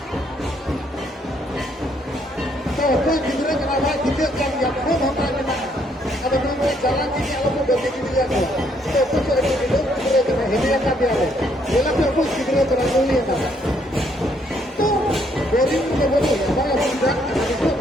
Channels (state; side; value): normal; both; correlation 0.70